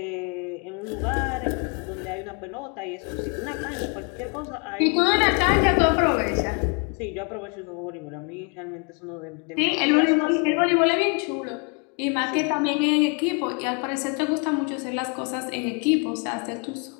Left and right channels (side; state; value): right; quieter; 34.7 dB